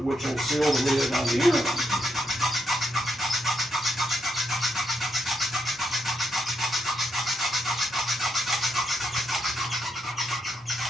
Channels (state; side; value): normal; both; correlation 0.80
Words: which will seal the lid on the inner one.